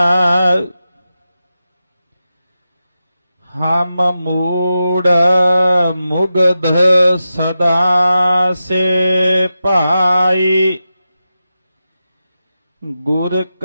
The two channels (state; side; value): inverted; both; correlation -0.91